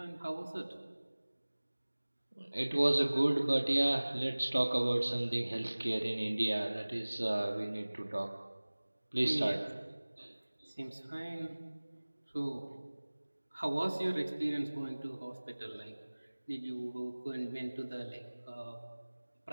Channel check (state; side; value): inverted; both; correlation -1.00